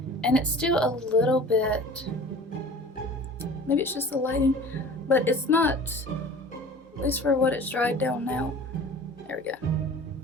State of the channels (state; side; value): normal; both; correlation 0.43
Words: and it's still a little bit, maybe it's just the lighting, but it's not, at least for what it's dried down now. There we go.